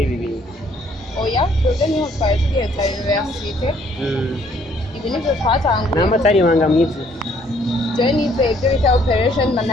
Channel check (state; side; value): normal; both; correlation 0.64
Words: ibi bintu oya twebwe niho twari tugiye ta universite ibi nivyo twatanguye n'amatari ibanga mwiza jewe nize ibyo bita operation